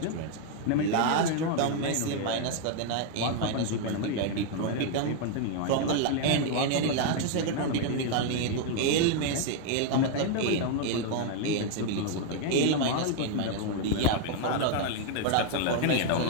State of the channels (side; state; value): both; different; correlation 0.00